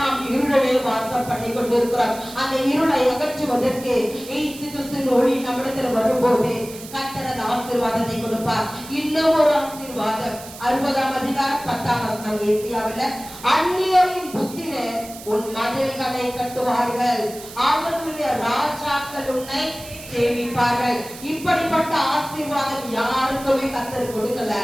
இருளே வாசம் பண்ணி கொண்டிருக்கிறோம். அந்த இருளை அகற்றுவதற்கு இயேசு கிறிஸ்துவின் ஒளி நம்மிடத்தில் வரும்போது கர்த்தர் ஆசீர்வாதத்தை கொடுப்பார். இன்னும் ஒரு ஆசீர்வாதம் 60ஆம் அதிகாரம் 10ஆம் வசனம். ஏசியாவில் அந்நியரின் புத்திரே உன் மதில்களை கட்டுவார்கள், அவர்களுடைய ராஜாக்கள் உன்னை சேமிப்பார்கள். இப்படிப்பட்ட ஆசீர்வாதம் யாருக்குமே கர்த்தர் கொடுக்கல.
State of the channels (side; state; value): right; noise; hiss, 15 dB below the sound